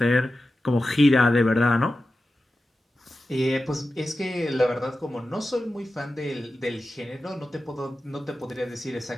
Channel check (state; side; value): normal; both; correlation 0.93